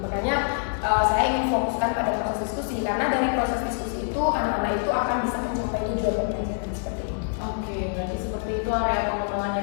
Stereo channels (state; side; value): silent; right; 61 dB below the other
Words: saya ingin fokuskan pada proses diskusi karena dari proses diskusi itu anak-anak itu akan bisa mencapai tujuan pembelajaran seperti itu. Oke, berarti seperti itu area pengembangannya